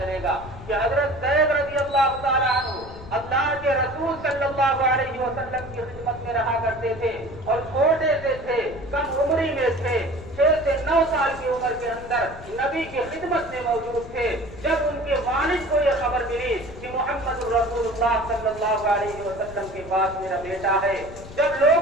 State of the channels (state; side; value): noise; left; rumble, 15 dB below the sound